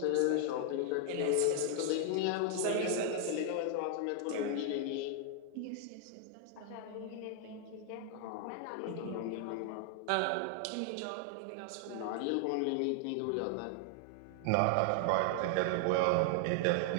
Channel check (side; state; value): both; different; correlation 0.00